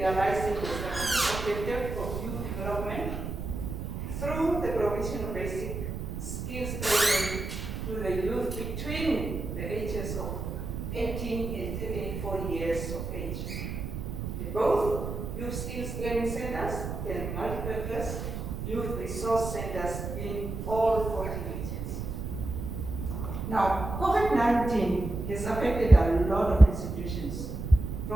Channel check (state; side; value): noise; right; rumble, 5 dB below the sound